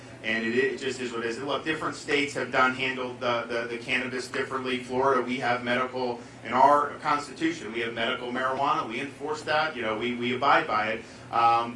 and it just is what it is. Look, different states have handled the cannabis differently. Florida, we have medical, in our Constitution, we have medical marijuana. We enforce that. You know, we abide by it.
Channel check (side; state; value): both; identical; correlation 1.00